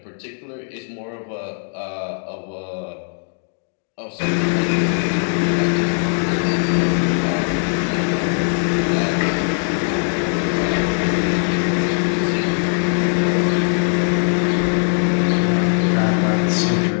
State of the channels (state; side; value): silent; right; 66 dB below the other